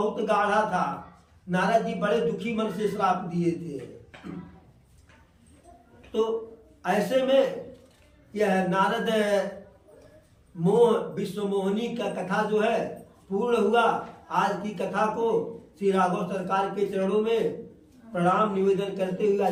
गाढ़ा था। नारद जी बड़े दुखी मन से श्राप दिए थे। तो ऐसे में यह नारद मोह विश्व मोहिनी का कथा जो है पूर्ण हुआ। आज की कथा को श्री राघव सरकार के चरणों में प्रणाम निवेदन करते हुए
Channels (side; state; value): both; identical; correlation 1.00